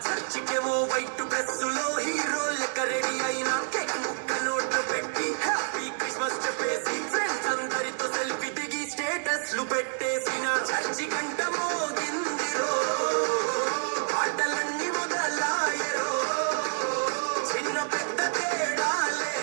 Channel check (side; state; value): left; silent; 59 dB below the other